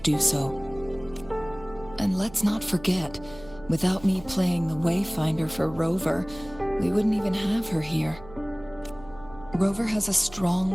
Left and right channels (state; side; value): noise; right; hum, 19 dB below the sound